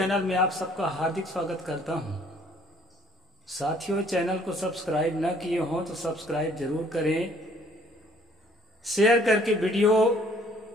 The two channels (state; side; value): normal; both; correlation 0.60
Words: में आप सबका हार्दिक स्वागत करता हूं। साथियों, चैनल को सब्सक्राइब न किए हों तो सब्सक्राइब जरूर करें। शेयर करके वीडियो